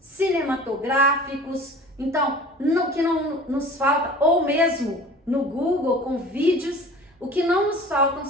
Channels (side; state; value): both; normal; correlation 0.42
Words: Então, o que não nos falta, ou mesmo no Google com vídeos, o que não nos faltam